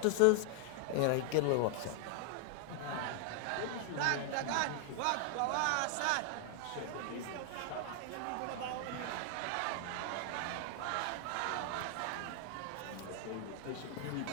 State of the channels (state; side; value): different; both; correlation 0.00